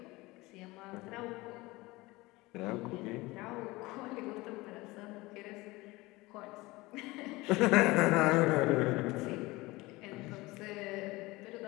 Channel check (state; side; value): quieter; right; 21.3 dB